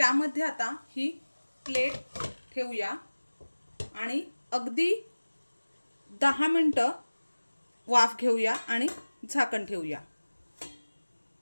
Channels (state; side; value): inverted; both; correlation -1.00